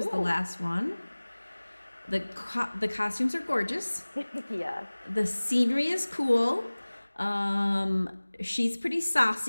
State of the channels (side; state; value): both; inverted; correlation -1.00